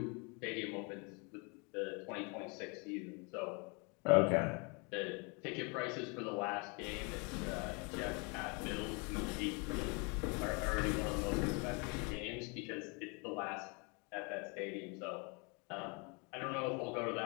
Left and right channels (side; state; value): right; quieter; 32.3 dB